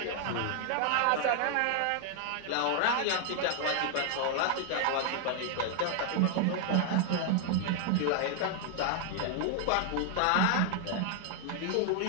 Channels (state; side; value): different; both; correlation 0.00